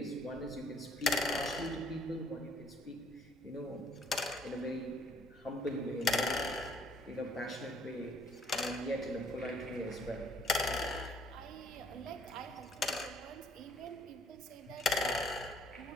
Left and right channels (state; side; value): normal; both; correlation 0.61